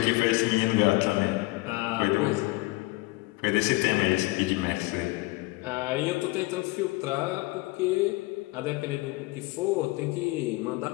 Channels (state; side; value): quieter; right; 22.3 dB